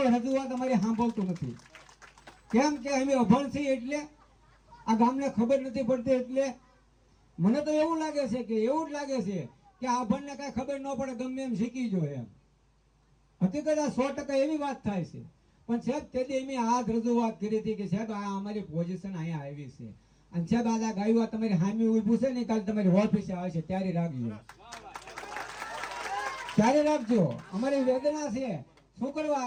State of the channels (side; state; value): both; identical; correlation 1.00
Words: રજૂઆત અમારી સાંભળતું નથી? કેમ કે અમે અભણ છીએ એટલે આ ગામને ખબર નથી પડતી. એટલે મને તો એવું લાગે છે કે એવું જ લાગે છે કે આ અભણને કાંઈ ખબર ન પડે, ગમે એમ શીખી જોઈએ એમ. હકીકત આ 100% એવી વાત થાય છે. પણ સાહેબ તેથી અમે આ રજૂઆત કરી હતી કે સાહેબ આ અમારી પોઝિશન અહીંયા આવી છે, અને સાહેબ આ ગાયું તમારી હામી ઊભું છે ને, કાલે તમારી ઓફિસે આવે છે ત્યારે રાખજો, ત્યારે રાખજો. અમારી વેદના છે. શું